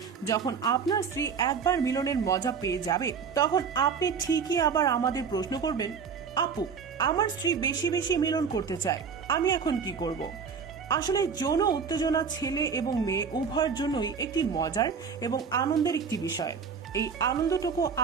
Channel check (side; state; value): left; quieter; 6.1 dB